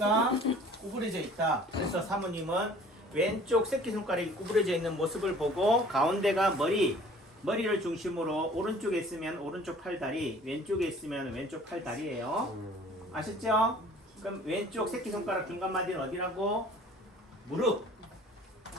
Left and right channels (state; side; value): normal; both; correlation 0.50